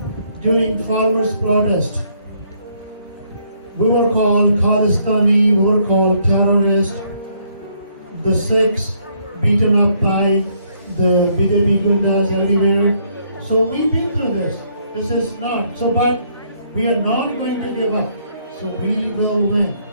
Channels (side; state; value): both; inverted; correlation -0.69